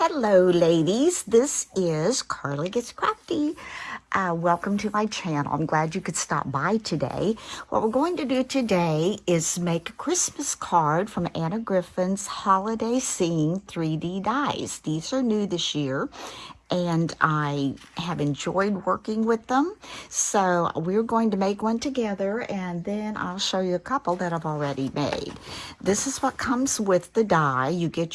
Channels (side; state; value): both; identical; correlation 1.00